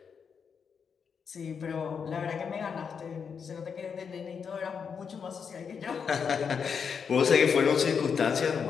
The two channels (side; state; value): right; quieter; 6.5 dB